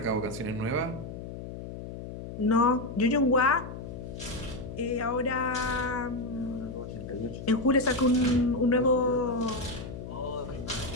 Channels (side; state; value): left; noise; hum, 10 dB below the sound